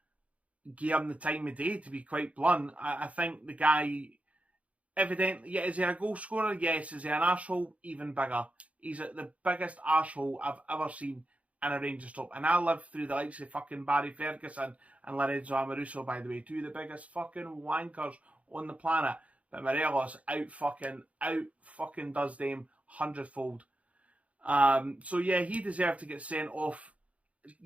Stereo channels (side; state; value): left; late; 0.066 ms